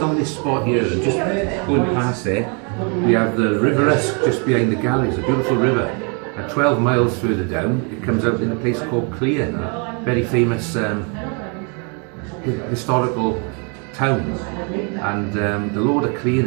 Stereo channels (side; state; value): left; quieter; 36.2 dB